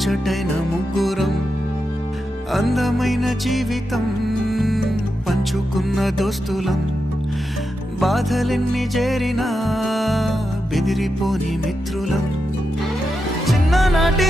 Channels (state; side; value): normal; both; correlation 0.87